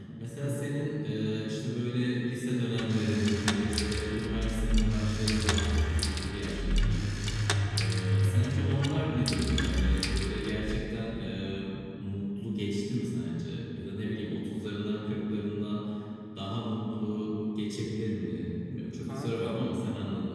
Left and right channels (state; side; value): identical; both; correlation 1.00